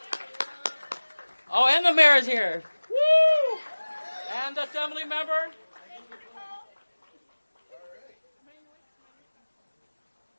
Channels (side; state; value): both; inverted; correlation -1.00